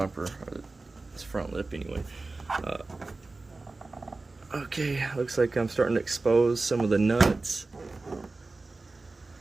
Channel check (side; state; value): left; quieter; 3.5 dB